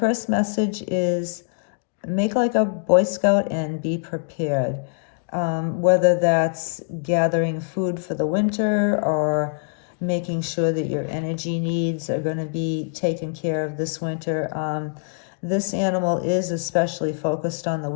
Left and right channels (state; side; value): silent; right; digital silence